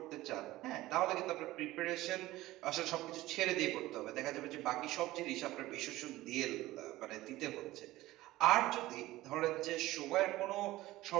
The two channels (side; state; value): left; quieter; 17.2 dB